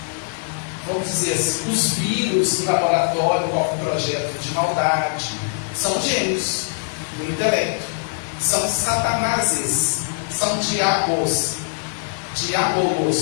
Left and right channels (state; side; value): silent; right; digital silence